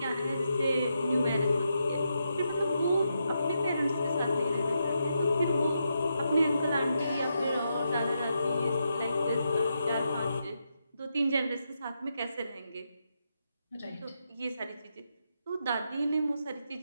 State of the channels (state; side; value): inverted; both; correlation -0.83